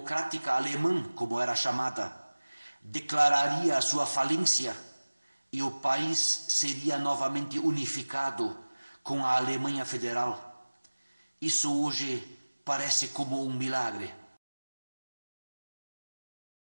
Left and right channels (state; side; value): inverted; both; correlation -1.00